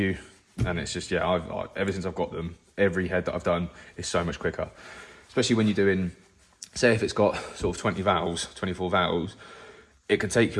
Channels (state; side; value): identical; both; correlation 1.00